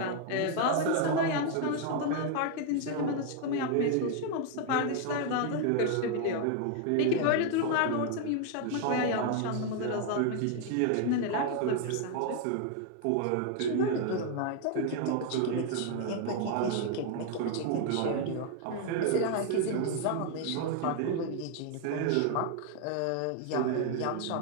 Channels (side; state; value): both; different; correlation 0.00